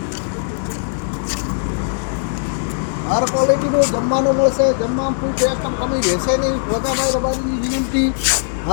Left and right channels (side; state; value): right; silent; digital silence